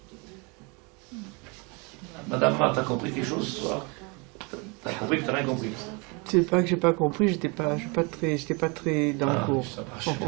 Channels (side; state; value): left; quieter; 30.4 dB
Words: Madame Marthe, t'as compris quelque chose ce soir? T'as compris que t'as rien compris? C'est pas que j'ai pas compris, j'étais pas très dans le cours. Ça marche.